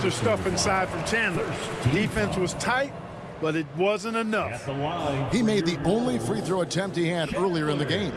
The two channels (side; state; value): both; identical; correlation 1.00